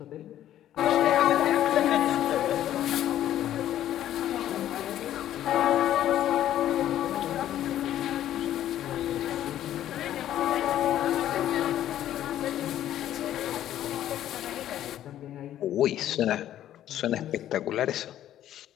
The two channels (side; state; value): right; quieter; 12.0 dB